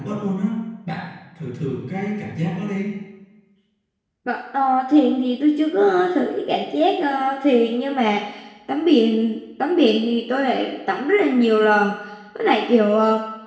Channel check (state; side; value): identical; both; correlation 1.00